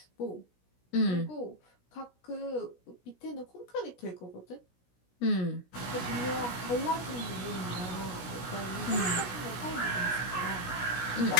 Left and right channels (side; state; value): right; late; 16 ms